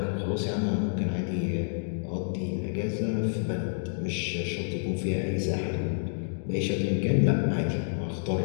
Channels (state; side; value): silent; right; digital silence